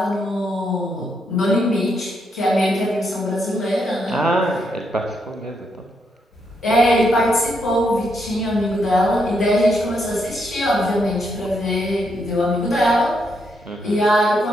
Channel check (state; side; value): normal; both; correlation 0.78